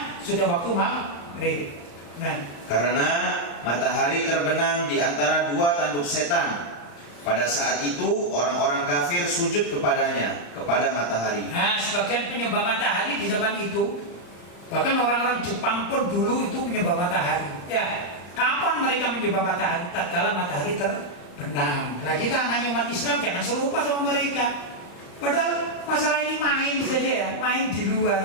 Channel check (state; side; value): late; right; 35 ms